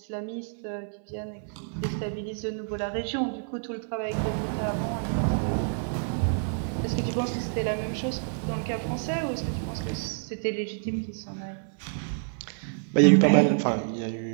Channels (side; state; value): left; silent; 58 dB below the other